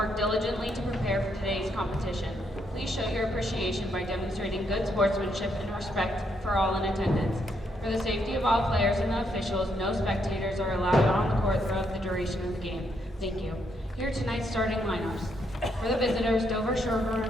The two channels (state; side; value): normal; both; correlation 0.76